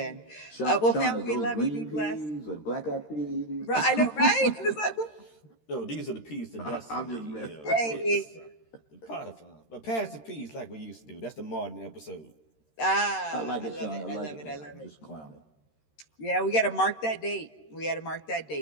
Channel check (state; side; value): late; right; 13 ms